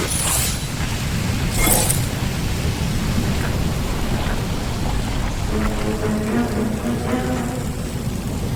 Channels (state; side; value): identical; both; correlation 1.00